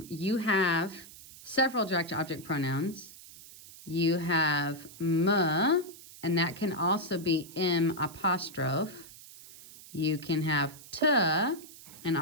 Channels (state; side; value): noise; right; hiss, 18 dB below the sound